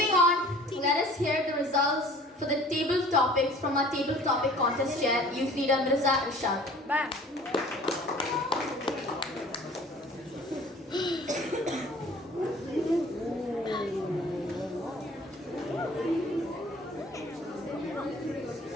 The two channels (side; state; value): both; normal; correlation 0.49